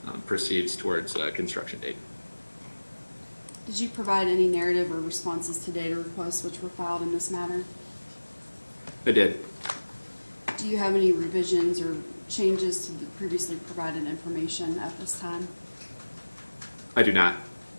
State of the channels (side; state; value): both; inverted; correlation -1.00